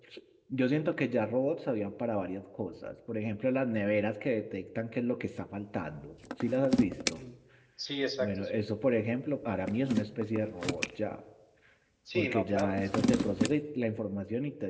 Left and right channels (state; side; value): identical; both; correlation 1.00